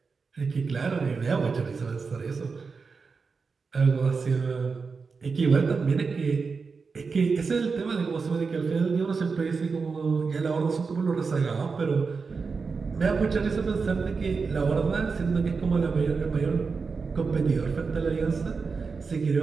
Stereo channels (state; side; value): quieter; left; 4.9 dB